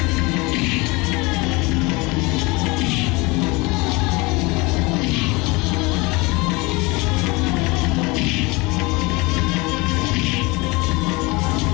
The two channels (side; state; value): right; quieter; 25.1 dB